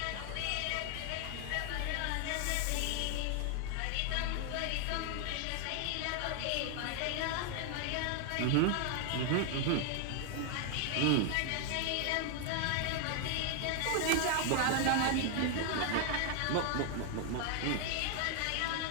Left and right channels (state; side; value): different; both; correlation 0.00